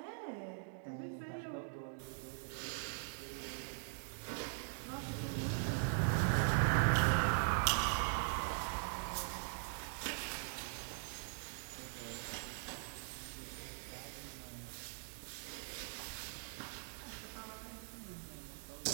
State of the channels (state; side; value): silent; left; digital silence